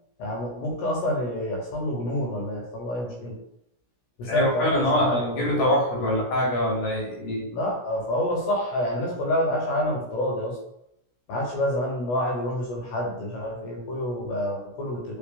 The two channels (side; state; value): right; late; 16 ms